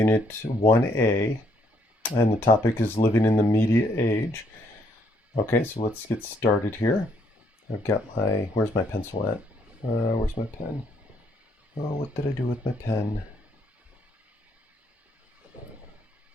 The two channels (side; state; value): both; normal; correlation 0.70